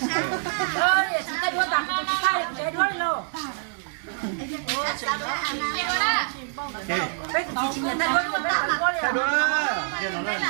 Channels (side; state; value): left; silent; digital silence